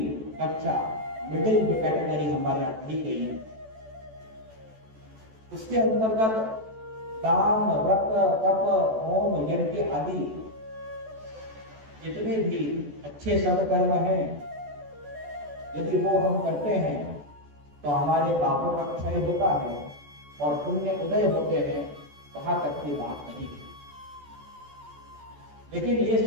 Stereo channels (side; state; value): left; late; 14 ms